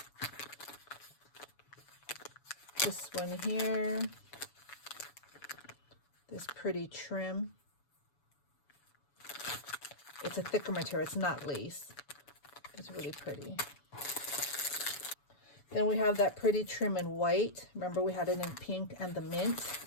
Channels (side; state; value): right; late; 7.0 ms